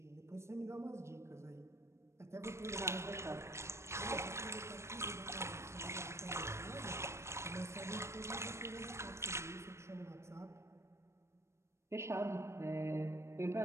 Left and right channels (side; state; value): left; late; 0.13 ms